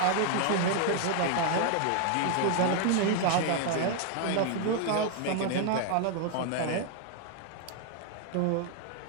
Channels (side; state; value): both; different; correlation 0.00